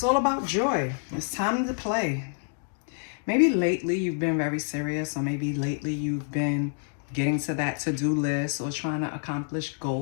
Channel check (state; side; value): silent; right; 60 dB below the other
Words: all about joy. It's time to play. Maybe lately you've been very serious, or maybe lately you've been getting to that to-do list or trying to accomplish